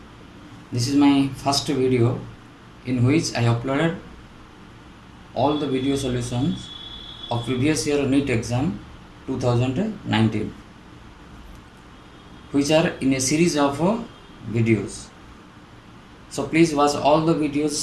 This is my first video in which I uploaded all the video solutions of previous year NEET exam 2019, which are in a series of videos. So please watch all the videos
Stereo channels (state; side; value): identical; both; correlation 1.00